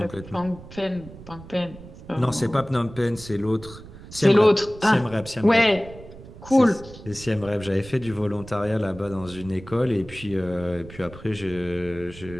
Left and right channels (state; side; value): noise; right; rumble, 17 dB below the sound